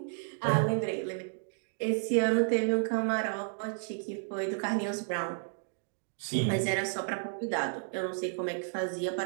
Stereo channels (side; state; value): left; silent; digital silence